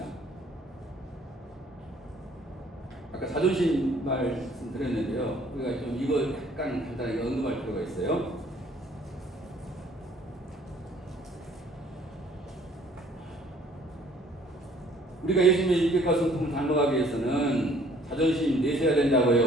아까 자존심 말씀드렸는데요. 우리가 좀 이거 약간 간단하게 언급할 필요가 있어요. 우리가 예수님의 인격과 성품을 닮아가기 위해서는 자존심 내셔야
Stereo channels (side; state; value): both; normal; correlation 0.58